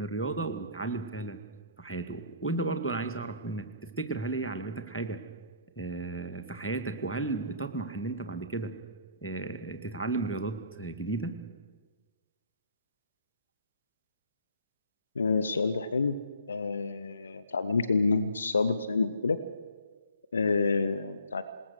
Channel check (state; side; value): inverted; both; correlation -0.56